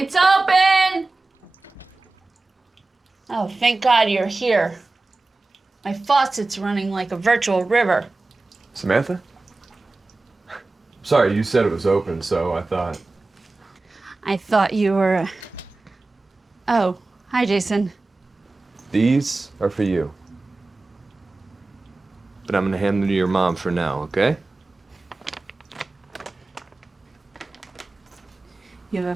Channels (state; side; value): quieter; left; 3.3 dB